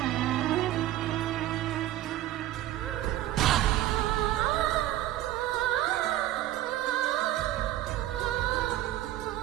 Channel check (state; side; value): quieter; left; 14.2 dB